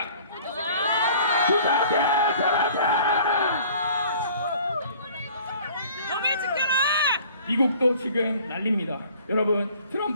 범인 지켜라! 미국도 지금 난립니다. 여러분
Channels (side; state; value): both; inverted; correlation -0.51